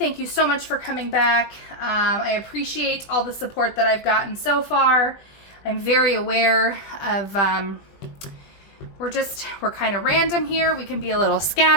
you so much for coming back. I appreciate all the support that I've gotten so far. I'm very aware of, we're kind of random here. We can be a little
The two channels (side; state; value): right; late; 20 ms